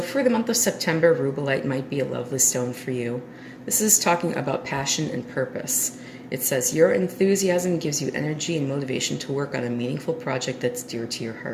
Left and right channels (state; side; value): identical; both; correlation 1.00